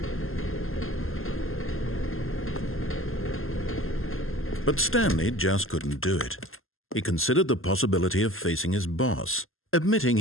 But Stanley just couldn't do it. He considered the possibility of facing his boss. Admitting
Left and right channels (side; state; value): right; late; 0.61 ms